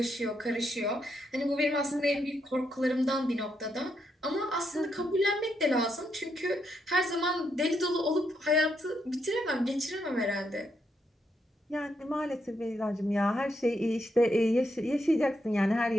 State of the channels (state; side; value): normal; both; correlation 0.79